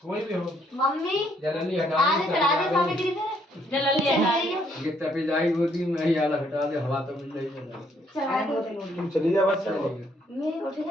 कोई भी हो मम्मी जल्दी हटा आज चढ़ा दे सामने गिरी थे जल्दी हटा दे ये तपे जाएगी होती मैं ही आला हटा दे हवा तो मिल रही है चढ़ा दो तुम चली जा बस चलो मैं उठ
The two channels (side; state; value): both; normal; correlation 0.69